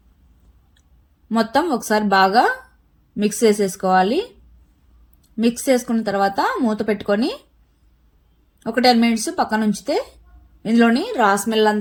మొత్తం ఒకసారి బాగా మిక్స్ చేసేసుకోవాలి. మిక్స్ చేసుకున్న తర్వాత మూత పెట్టుకొని ఒక 10 మినిట్స్ పక్కన ఉంచితే ఇందులోని రా స్మెల్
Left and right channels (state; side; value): identical; both; correlation 1.00